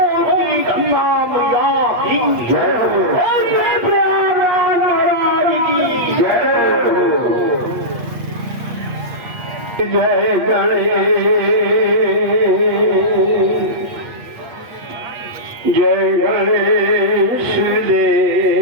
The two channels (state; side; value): late; left; 8.6 ms